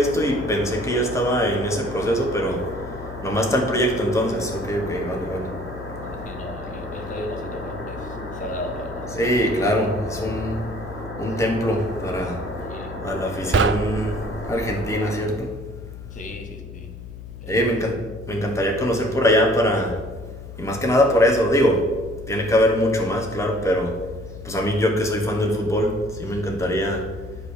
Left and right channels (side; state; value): left; noise; hum, 13 dB below the sound